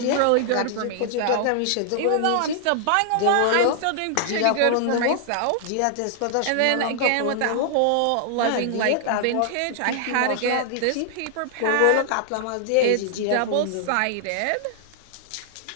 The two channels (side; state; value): both; different; correlation -0.01